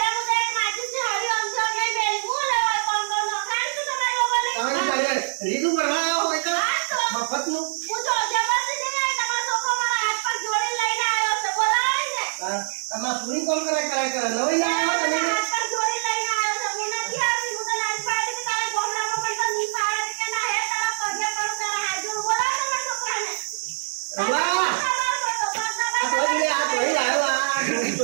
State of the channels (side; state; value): left; silent; digital silence